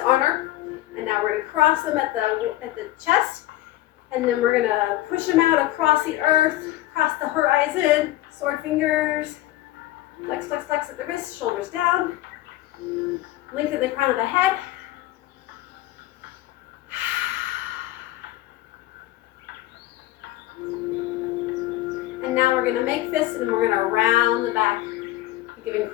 honor. And now we're gonna cross them at the chest. And then we're gonna push them out across the earth, across the horizon. Sword fingers. Flex, flex, flex at the wrist, shoulders down. Lengthen the crown of the head. And now we're going to make fists and we're going to round the back. Give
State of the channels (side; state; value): right; quieter; 15.9 dB